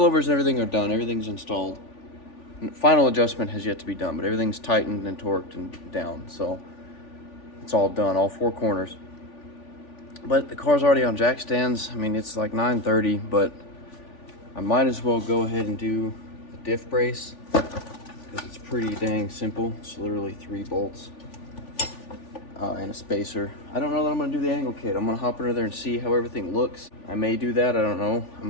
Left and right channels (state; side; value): late; right; 3.4 ms